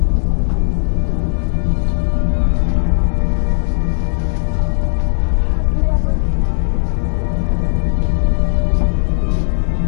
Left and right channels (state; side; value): silent; right; digital silence